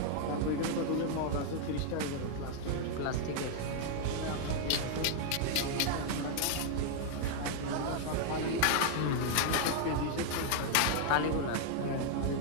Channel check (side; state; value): both; different; correlation 0.00